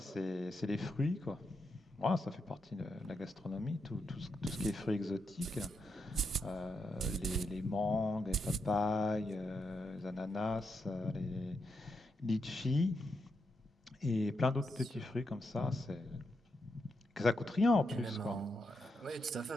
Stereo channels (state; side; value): normal; both; correlation 0.83